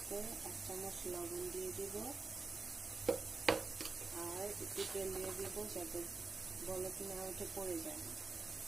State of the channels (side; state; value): left; quieter; 4.1 dB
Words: 1 চামচ লবণ দিয়ে দিব আর একটু তেল দিয়ে দিব যাতে বলক না উঠে পড়ে যায়।